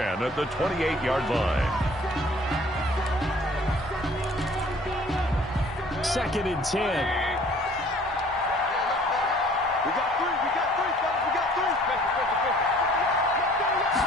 at the 28-yard line. 2nd and 10.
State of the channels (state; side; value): normal; both; correlation 0.54